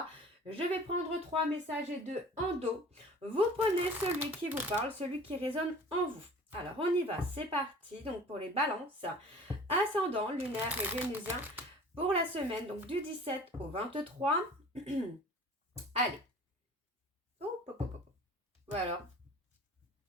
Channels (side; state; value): both; normal; correlation 0.45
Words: Je vais prendre 3 messages et 2 en dos. Vous prenez celui qui vous parle, celui qui résonne en vous. Alors on y va, c'est parti. Donc pour les balances, ascendant, lunaire et vénusien pour la semaine donc du 17 au 23. Allez. Voilà.